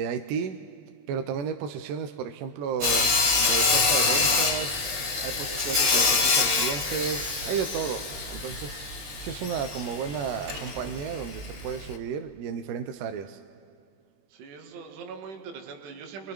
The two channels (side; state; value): left; late; 20 ms